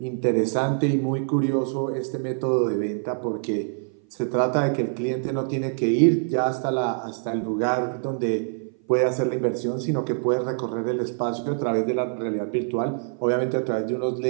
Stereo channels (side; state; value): left; silent; 57 dB below the other